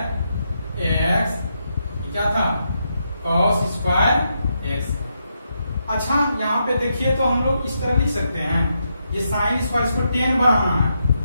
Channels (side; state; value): both; inverted; correlation -0.82